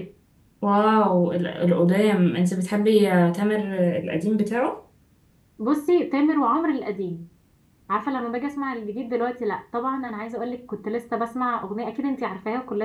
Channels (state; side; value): identical; both; correlation 1.00